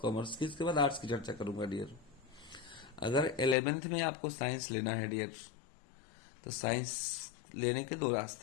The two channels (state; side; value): drops out; right; at 3.6 s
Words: कॉमर्स की, इसके बाद आर्ट्स की चर्चा करूंगा डियर। अगर 11th में आपको साइंस लेना है डियर, तो साइंस लेने के दो